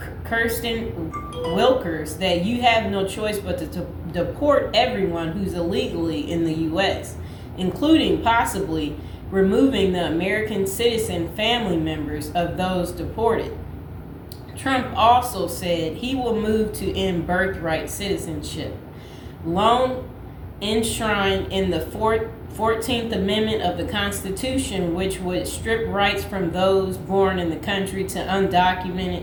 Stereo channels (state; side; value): identical; both; correlation 1.00